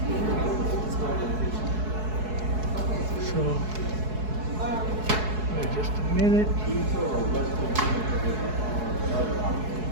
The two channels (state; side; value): late; left; 4.7 ms